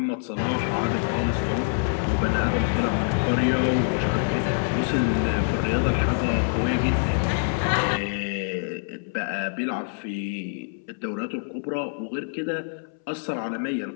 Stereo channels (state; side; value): silent; right; 61 dB below the other